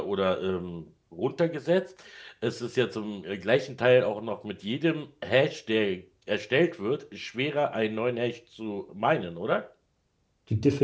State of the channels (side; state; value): both; identical; correlation 1.00